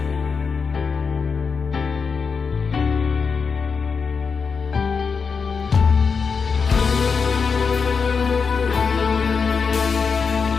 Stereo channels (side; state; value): right; quieter; 5.5 dB